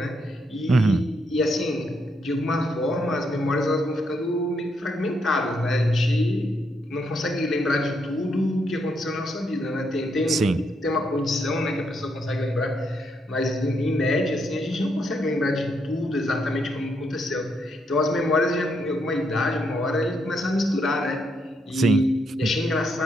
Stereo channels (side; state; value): both; normal; correlation 0.77